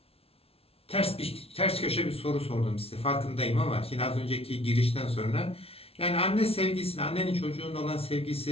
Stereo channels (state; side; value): late; right; 0.28 ms